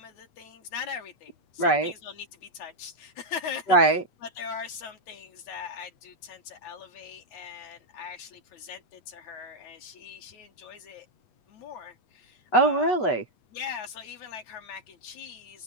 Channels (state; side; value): late; right; 8.2 ms